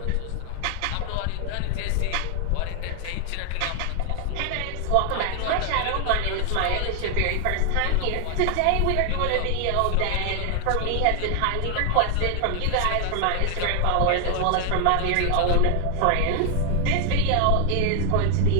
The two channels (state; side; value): different; both; correlation 0.00